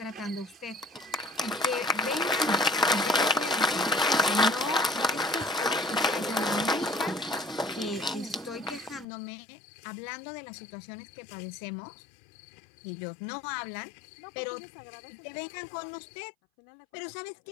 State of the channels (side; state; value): right; drops out; at 9.1 s